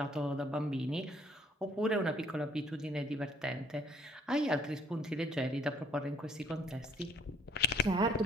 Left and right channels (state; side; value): normal; both; correlation 0.62